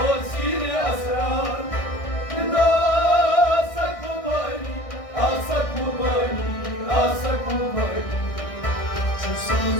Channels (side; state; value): right; late; 1.6 ms